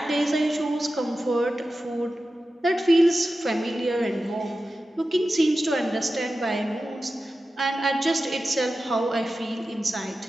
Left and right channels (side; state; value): both; normal; correlation 0.93